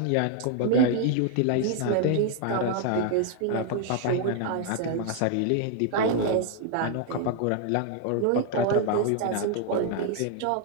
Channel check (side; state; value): both; different; correlation 0.00